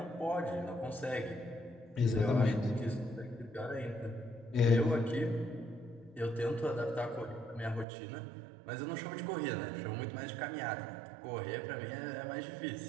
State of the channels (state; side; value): drops out; left; at 7.9 s